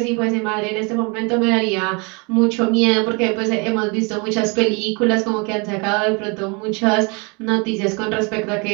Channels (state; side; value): quieter; left; 31.0 dB